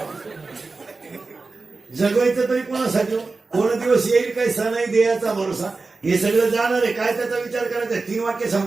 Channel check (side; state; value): left; quieter; 3.9 dB